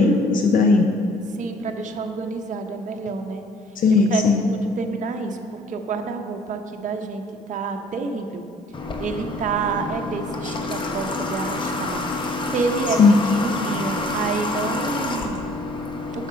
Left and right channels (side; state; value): both; normal; correlation 0.56